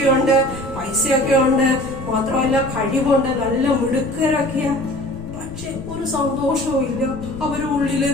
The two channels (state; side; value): noise; left; rumble, 14 dB below the sound